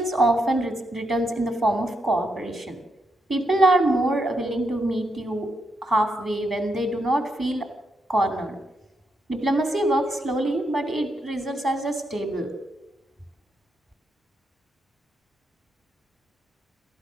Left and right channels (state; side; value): normal; both; correlation 0.81